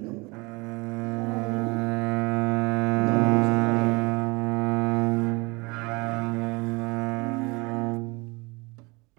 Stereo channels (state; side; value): quieter; left; 26.2 dB